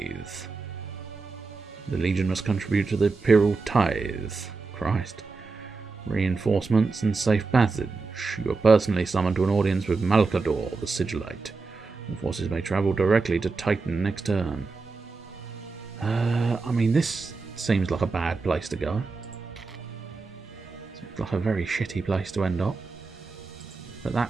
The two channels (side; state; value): left; quieter; 4.2 dB